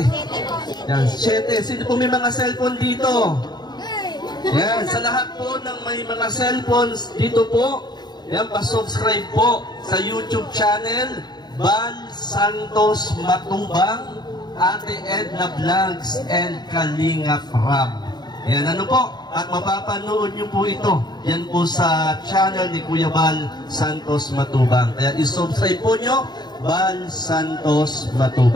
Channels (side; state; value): right; late; 0.20 ms